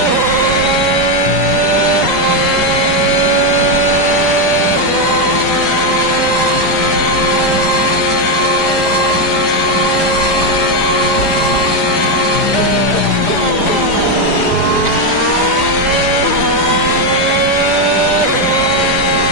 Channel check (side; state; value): right; late; 4.9 ms